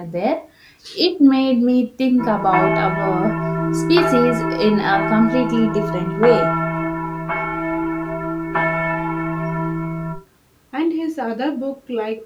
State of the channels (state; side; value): identical; both; correlation 1.00